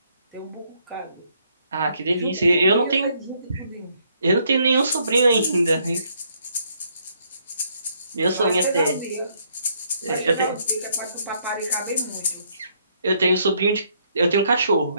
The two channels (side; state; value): both; inverted; correlation -0.70